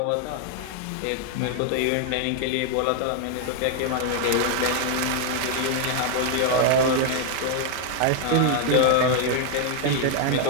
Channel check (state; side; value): different; both; correlation 0.00